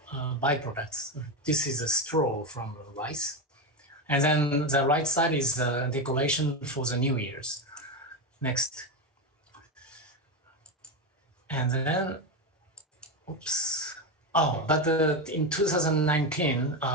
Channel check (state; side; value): normal; both; correlation 0.13